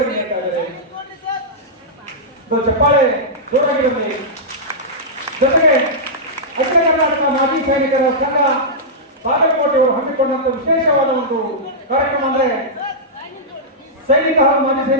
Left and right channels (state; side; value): normal; both; correlation -0.12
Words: ನೀಡ್ತಾ ಇದ್ದಾರೆ. ಚಪ್ಪಾಳೆ ಜೋರಾಗಿರಲಿ. ಜೊತೆಗೆ ಅಖಿಲ ಕರ್ನಾಟಕ ಮಾಜಿ ಸೈನಿಕರ ಸಂಘ ಬಾಗಲಕೋಟೆಯವರು ಹಮ್ಮಿಕೊಂಡಂತ ವಿಶೇಷವಾದ ಒಂದು ಕಾರ್ಯಕ್ರಮ ಅಂದ್ರೆ ಸೈನಿಕ ಹಾಗೂ ಮಾಜಿ